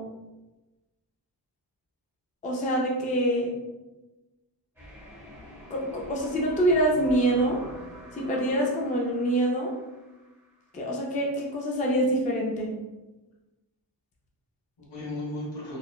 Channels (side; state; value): both; normal; correlation 0.17